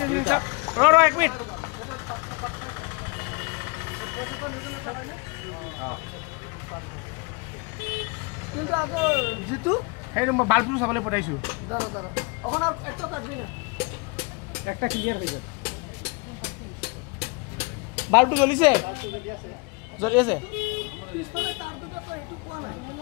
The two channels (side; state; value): right; quieter; 29.2 dB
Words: আছে সব র এক মিনিট কিন্তু আগে জিতু এই বাল্বটো চাবলৈ পঠাইছো দাঁড়া দাঁড়া এখন আর একটা কাটবি না একটা ক্লিয়ার হয়ে যাবে বাল্বটো জ্বলিছে জ্বলি আছে পিছফালে তার দুটা তো একটু কোয়া নাই